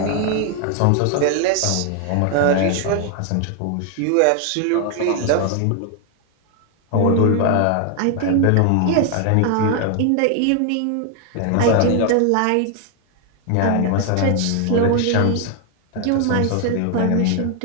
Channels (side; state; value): both; different; correlation 0.00